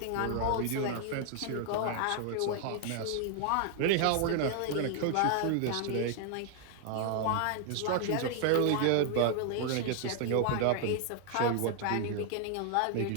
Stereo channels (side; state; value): both; different; correlation 0.00